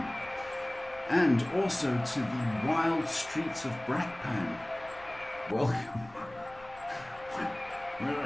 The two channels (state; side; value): noise; left; rumble, 23 dB below the sound